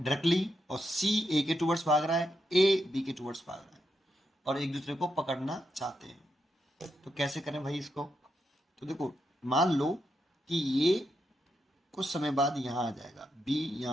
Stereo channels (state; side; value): normal; both; correlation 0.83